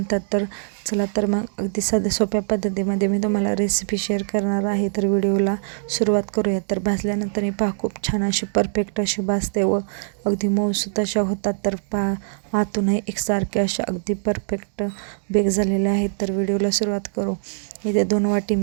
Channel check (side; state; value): left; silent; 62 dB below the other